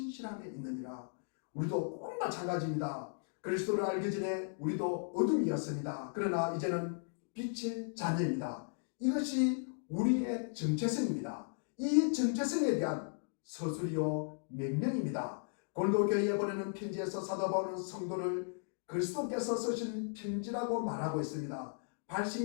있느니라. 우리도 꼭 마찬가지입니다. 그리스도를 알기 전에 우리도 어둠이었습니다. 그러나 이제는 빛의 자녀입니다. 이것이 우리의 정체성입니다. 이 정체성에 대한 서술이요 명령입니다. 고린도교회에 보내는 편지에서 사도 바울은 성도를 그리스도께서 쓰신 편지라고 말하고 있습니다.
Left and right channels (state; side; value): silent; right; digital silence